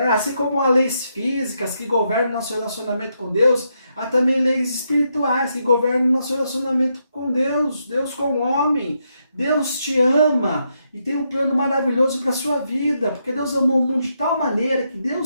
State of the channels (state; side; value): inverted; both; correlation -0.80